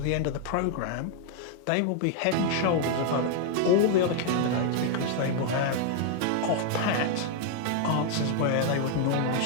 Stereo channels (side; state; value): both; different; correlation 0.00